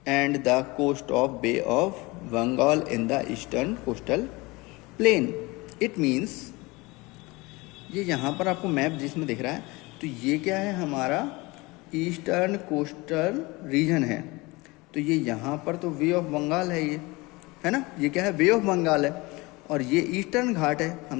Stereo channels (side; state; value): right; quieter; 23.6 dB